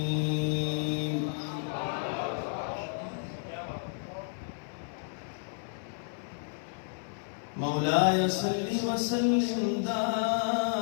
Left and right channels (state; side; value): silent; right; 57 dB below the other